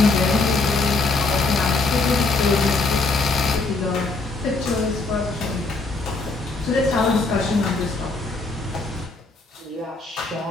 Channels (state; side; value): quieter; right; 3.5 dB